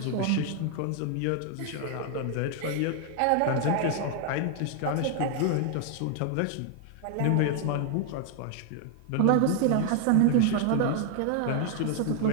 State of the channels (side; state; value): both; different; correlation 0.00